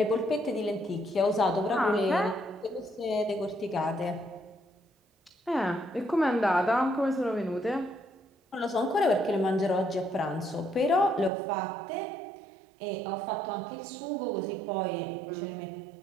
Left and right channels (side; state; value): left; drops out; at 11.3 s